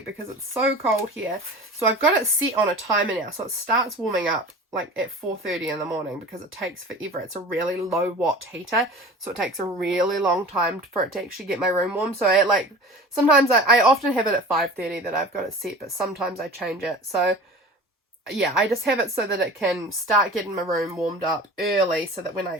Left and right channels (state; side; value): normal; both; correlation 0.38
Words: it's so cold here. So I've got it set on a timer now, so it starts warming up like at 4:30 in the morning, because it takes forever. It's a really low watt heater, so it takes a really long time for it to actually get my room warm. So sometimes I often have it at 5:30 that I've got it set, but sometimes I change it. So yeah, I just have it so that it can start getting my room warmed up early, so that when